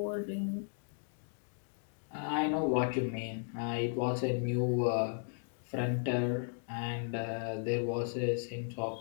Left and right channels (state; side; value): silent; right; digital silence